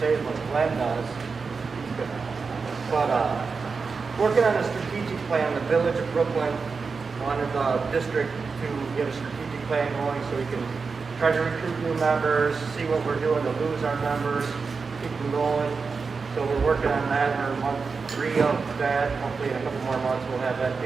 as what Glenn does. But working on a strategic plan, the village of Brooklyn wanted the district to get a strategic plan going so we can try to recruit new members, see what we're doing to lose our members, keep them going. So we're working on that. We're in month 3 of that. Hopefully in a couple more months we'll have that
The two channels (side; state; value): left; quieter; 4.8 dB